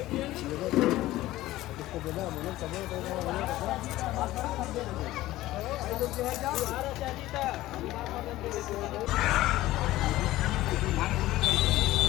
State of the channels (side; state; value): right; quieter; 16.4 dB